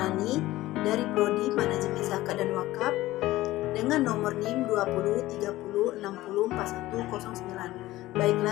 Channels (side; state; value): right; quieter; 16.9 dB